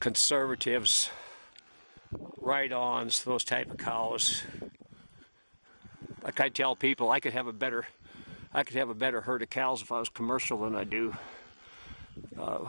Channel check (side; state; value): both; inverted; correlation -1.00